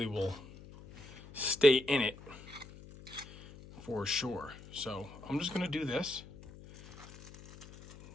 will stay in it for sure. So I'm just gonna do this.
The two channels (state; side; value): noise; left; hum, 17 dB below the sound